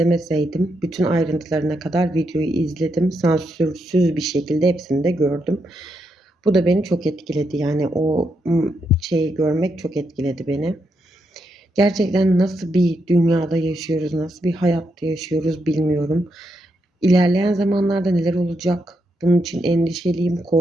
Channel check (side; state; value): both; normal; correlation 0.81